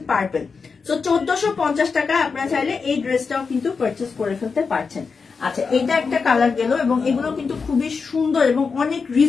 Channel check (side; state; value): right; quieter; 5.1 dB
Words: পার্পল। সো 1450 টাকা আপনারা চাইলে এই ড্রেসটাও কিন্তু পারচেস করে ফেলতে পারছেন। আচ্ছা এটা একটা কালার গেল, এবং এগুলো কিন্তু খুবই সুন্দর এবং অনেক